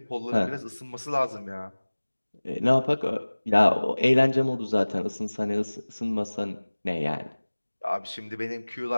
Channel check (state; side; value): inverted; both; correlation -1.00